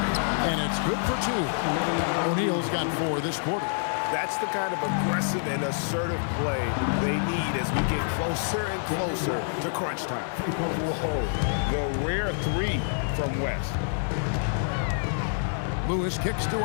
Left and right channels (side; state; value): right; silent; digital silence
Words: And it's good for 2. O'Neal's got 4 this quarter. That's the kind of aggressive and assertive play they need as we get closer and closer to crunch time. Whoa, the rare 3 from West. Lewis kicks to